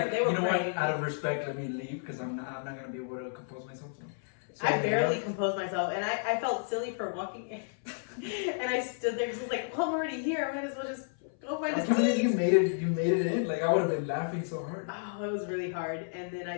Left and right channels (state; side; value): silent; right; 57 dB below the other